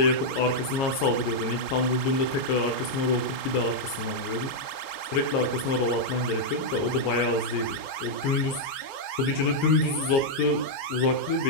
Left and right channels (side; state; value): right; late; 22 ms